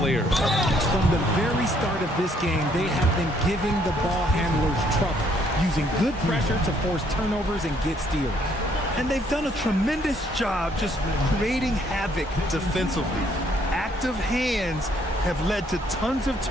From the very start of this game, they have been giving the ball handlers trouble, using good pressure to force turnovers and get steals. And they've done a tremendous job just creating havoc defensively. Active hands have led to tons of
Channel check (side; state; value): both; normal; correlation 0.67